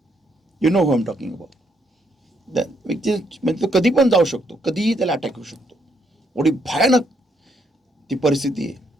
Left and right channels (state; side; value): normal; both; correlation 0.74